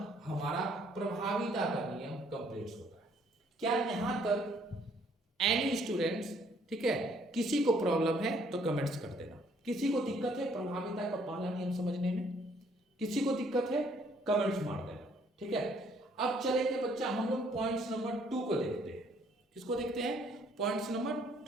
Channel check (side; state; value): both; normal; correlation 0.64